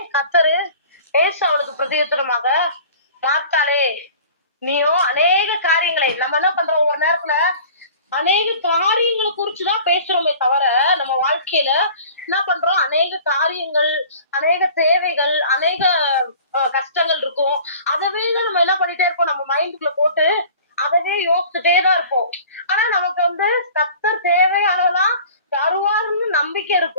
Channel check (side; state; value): both; inverted; correlation -0.45